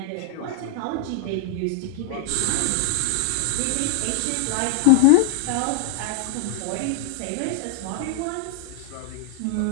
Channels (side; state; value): both; different; correlation 0.00